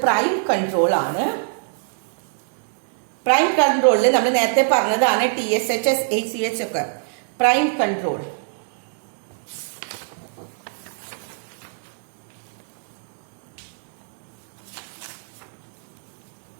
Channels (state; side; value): silent; left; digital silence